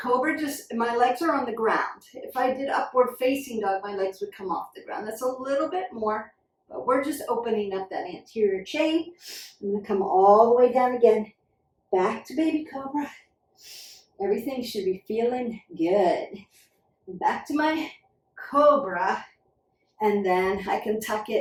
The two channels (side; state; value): both; identical; correlation 1.00